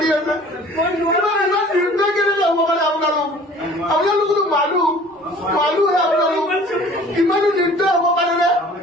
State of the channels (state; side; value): normal; both; correlation 0.49